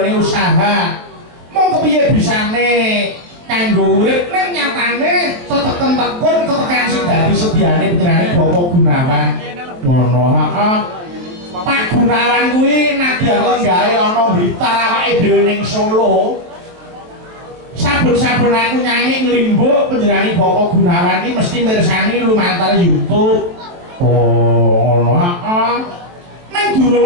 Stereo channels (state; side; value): late; left; 23 ms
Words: usaha mong kepiye bisane kanggo urip ning nyatane teteken-tekun tetekan sing dadi sediane panjenenganing Bapak Gunawan ngono heeh Pak Gunawan kuwi nadyan gawe ana Blitar awake dhewe ning Solo saben-saben aku nyanyi nglimbuk panjenenganing Bapak Gunawan iki mesti mirsani lumantar YouTube oh ngono heeh nang